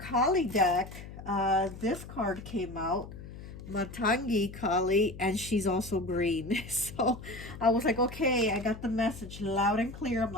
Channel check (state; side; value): noise; left; hum, 13 dB below the sound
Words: deck, this card came out, Matangi Kali, and she's also green. So I was like, okay, I got the message loud and clear. I'm